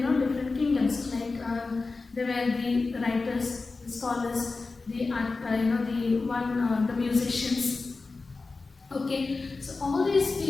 kingdoms. Like there were the writers, the scholars, the the musicians. Okay, so all these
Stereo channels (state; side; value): quieter; right; 3.9 dB